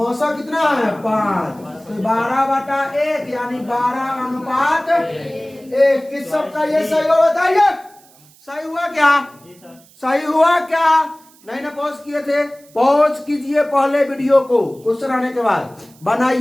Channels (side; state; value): right; noise; hiss, 27 dB below the sound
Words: कितना है? 5। तो 12/1 यानी 12 अनुपात 1। किस सबका ये सही हो? बताइए सही हुआ क्या? सही हुआ क्या? नहीं ना पॉज किए थे? पॉज कीजिए पहले वीडियो को, क्वेश्चन आने के बाद